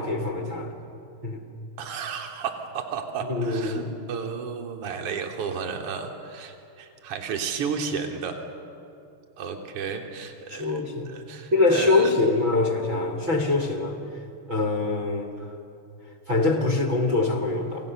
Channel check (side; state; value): left; late; 7.2 ms